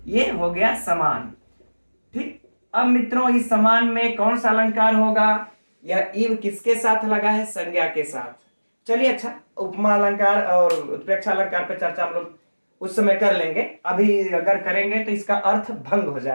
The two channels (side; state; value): both; inverted; correlation -1.00